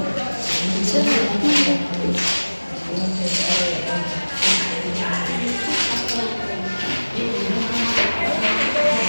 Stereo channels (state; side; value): inverted; both; correlation -1.00